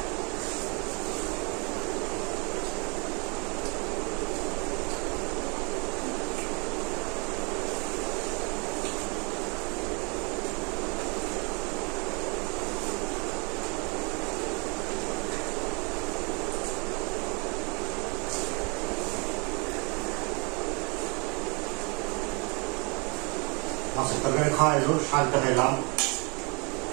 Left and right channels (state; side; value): quieter; left; 31.5 dB